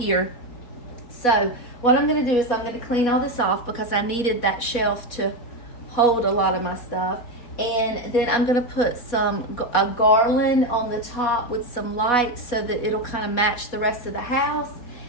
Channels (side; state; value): right; late; 4.1 ms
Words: So what I'm going to do is I'm going to clean all this off because I needed that shelf to hold a lot of my stuff. And then I'm going to put a garland on the top with some lights so that it'll kind of match the rest of the house.